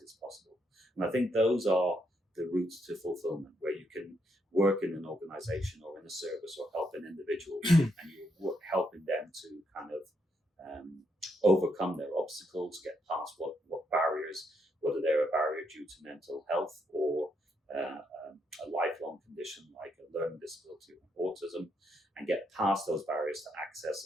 as possible. And I think those are the routes to fulfillment, where you can work in an organization or in a service or help an individual and you're helping them to kind of overcome their obstacles, get past what barriers, whether they're a barrier due to mental health or a lifelong condition like a learning disability or autism, and get past those barriers to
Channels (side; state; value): both; normal; correlation 0.77